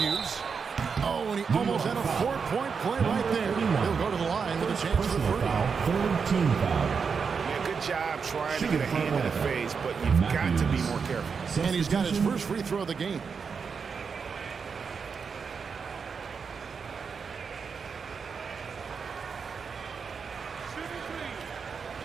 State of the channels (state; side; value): quieter; left; 5.8 dB